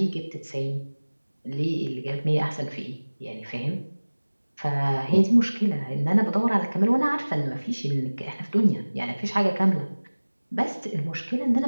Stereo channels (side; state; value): both; inverted; correlation -1.00